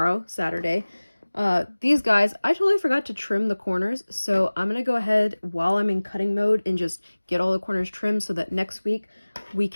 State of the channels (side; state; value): both; inverted; correlation -1.00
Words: Saturday. These guys, I totally forgot to trim the corners, so I'm going to go ahead while I'm in cutting mode and just get all the corners trimmed so that next week we